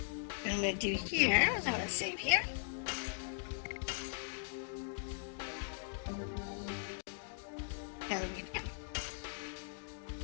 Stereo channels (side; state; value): right; silent; digital silence